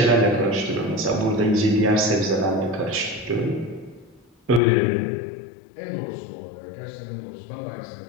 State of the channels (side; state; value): right; drops out; at 4.6 s